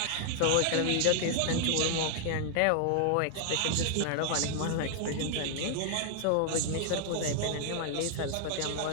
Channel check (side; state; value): both; different; correlation 0.00